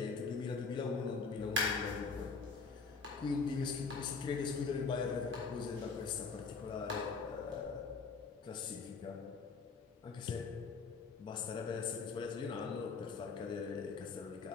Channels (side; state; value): right; quieter; 4.7 dB